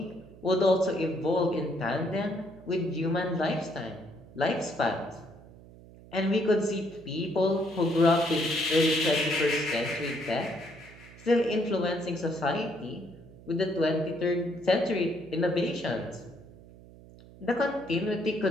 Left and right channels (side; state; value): right; noise; hum, 20 dB below the sound